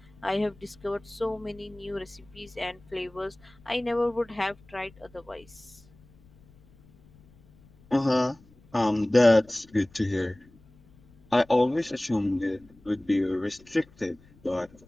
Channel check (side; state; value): left; noise; rumble, 27 dB below the sound